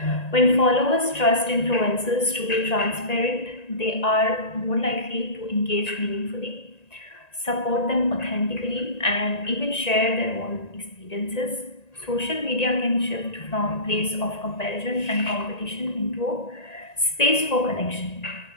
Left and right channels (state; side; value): late; right; 1.9 ms